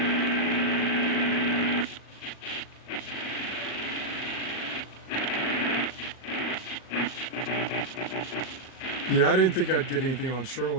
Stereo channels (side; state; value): right; late; 38 ms